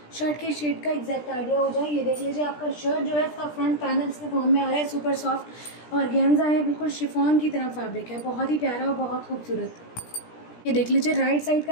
शर्ट के शेड का एग्जैक्ट आइडिया हो जाए। ये देख लीजिए, आपका शर्ट जो है इसका फ्रंट पैनल इसके फॉर्म में आ रहा है। सुपर सॉफ्ट ऑर्गेन्जा है, बिल्कुल शिफॉन की तरह फैब्रिक है, बहुत ही प्यारा और बहुत खूबसूरत। ये देख लीजिए, राइट साइड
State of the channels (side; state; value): right; late; 17 ms